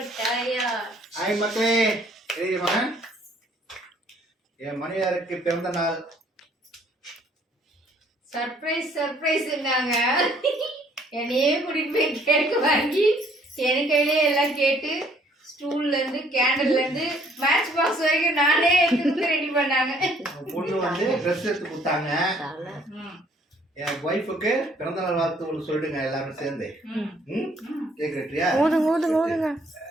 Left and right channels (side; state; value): both; normal; correlation 0.61